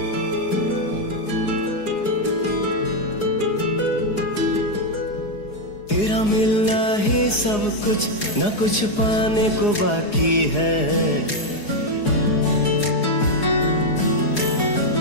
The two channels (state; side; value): late; right; 4.8 ms